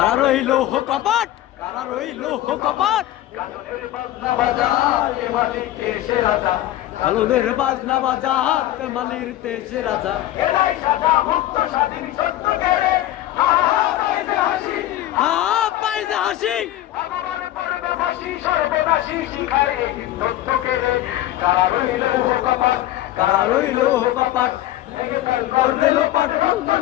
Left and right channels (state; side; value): quieter; right; 14.3 dB